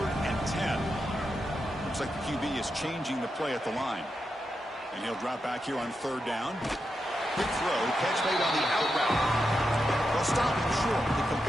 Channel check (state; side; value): normal; both; correlation 0.87